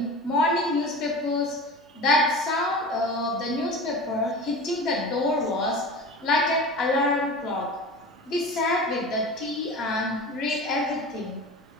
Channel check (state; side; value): normal; both; correlation 0.34